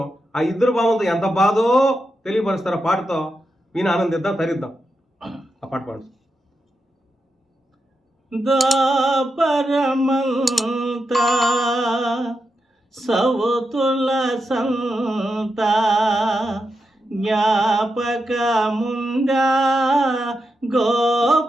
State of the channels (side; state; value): both; normal; correlation 0.86